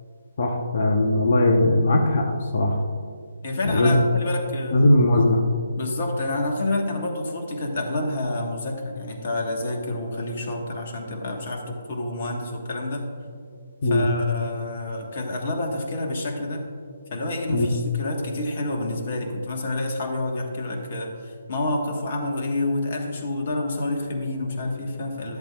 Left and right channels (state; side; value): inverted; both; correlation -0.80